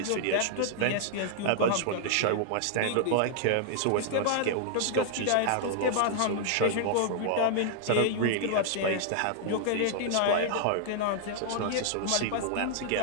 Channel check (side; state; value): both; different; correlation 0.00